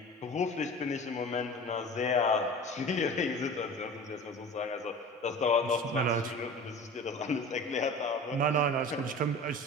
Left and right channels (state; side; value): normal; both; correlation 0.37